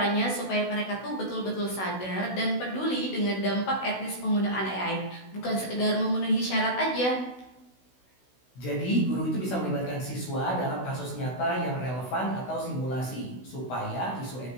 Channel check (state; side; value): late; right; 16 ms